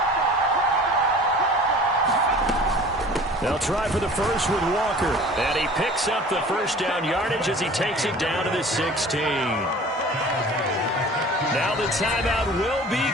They'll try for the first with Walker. And he picks up the first down yardage as he takes it down to the 16. Now the timeout will be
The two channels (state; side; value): normal; both; correlation 0.44